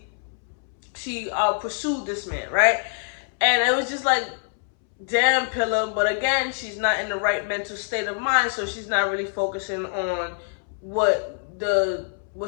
pursued this man, right? And it was just like, damn, Pilar. But again, she's not in the right mental state of mind, so she's not really focusing on what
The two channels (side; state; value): right; silent; 62 dB below the other